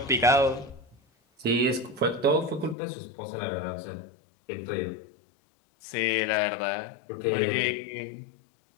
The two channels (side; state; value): right; drops out; at 2.8 s